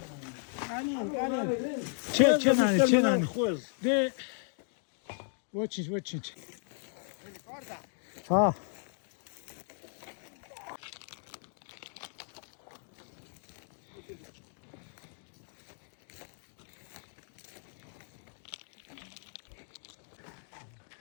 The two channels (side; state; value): right; silent; 54 dB below the other